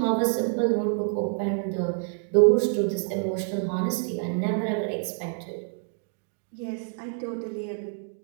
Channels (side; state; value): left; silent; 60 dB below the other